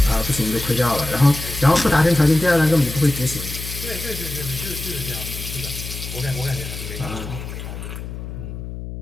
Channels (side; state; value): left; noise; hum, 9 dB below the sound